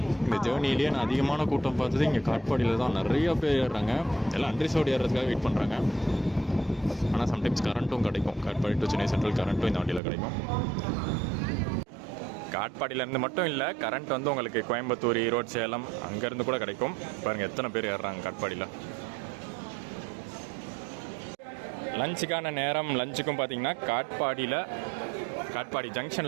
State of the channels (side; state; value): left; drops out; at 10.0 s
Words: இந்த ஜேர்னிலேயே நான் அதிகமான கூட்டம் பார்த்தது இங்கே காட்பாடியில் தான். நிறைய பேர் ஏறுறாங்க. எல்லாம் அன்ரிசர்வ்டு ஏறுறதுக்காக வெயிட் பண்ணுறாங்க. ஆனால் சம்டைம்ஸ் கரண்ட்டும் கிடைக்கும். காட்பாடி டு சென்னை சென்ட்ரல் கரண்ட்டும் இந்த வண்டியில் கிடைக்கும். காட்பாடியிலேருந்து மட்டும் இல்லை, கரண்ட் வந்து உங்களுக்கு கோயம்புத்தூர், ஈரோடு, சேலம் அங்கேருந்து கூட கிடைக்கும். பாருங்கள் எத்தனை பேர் ஏறுறாங்க காட்பாடியில். லஞ்சுக்கான நேரம். லஞ்சுக்கும் பார்த்தீங்கன்னா காட்பாடி